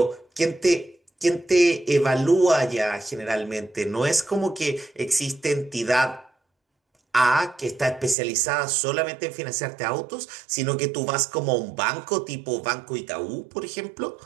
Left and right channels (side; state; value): left; drops out; at 8.2 s